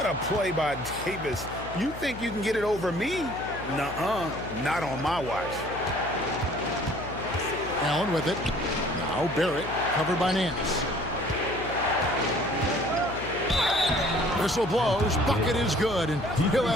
a play by Davis. You think you can get it over me? Nuh-uh. Not on my watch. Allen with it. Now Barrett, covered by Nance. Whistle blows. Bucket is good, and he'll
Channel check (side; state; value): left; noise; hum, 12 dB below the sound